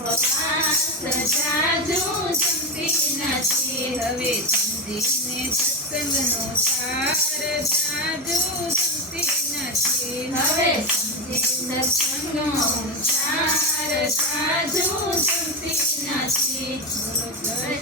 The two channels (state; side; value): normal; both; correlation 0.14